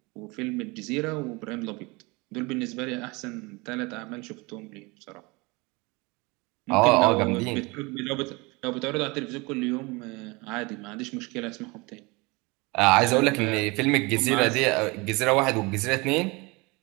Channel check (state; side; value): quieter; left; 25.9 dB